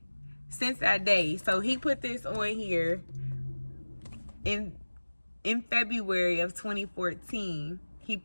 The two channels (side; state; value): both; inverted; correlation -1.00